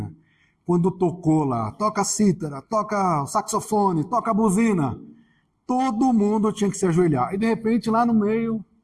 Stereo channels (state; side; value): identical; both; correlation 1.00